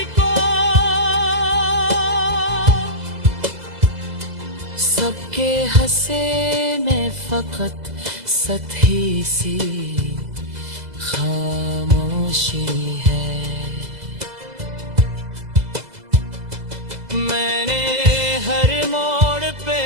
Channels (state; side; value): late; left; 2.0 ms